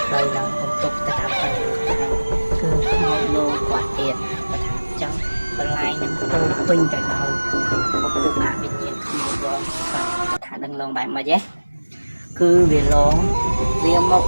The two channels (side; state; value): both; inverted; correlation -1.00